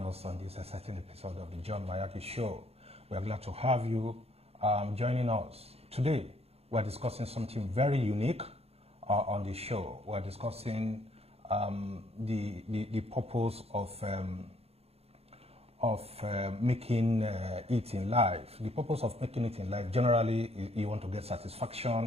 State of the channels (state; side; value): late; left; 0.29 ms